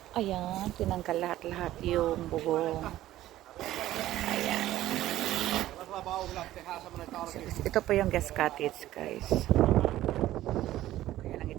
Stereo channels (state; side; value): quieter; left; 14.4 dB